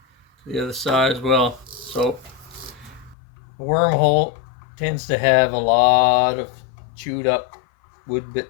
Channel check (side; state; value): right; drops out; at 3.2 s